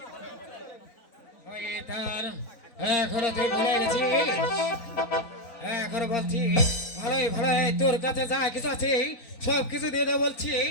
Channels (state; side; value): late; right; 4.0 ms